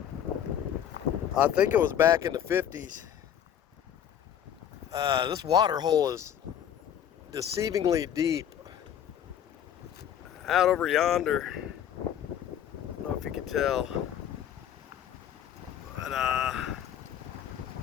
I think it was back in the 50s. This water hole is deceivingly deep. Out over yonder. I don't know if you can tell. But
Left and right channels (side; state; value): right; quieter; 9.7 dB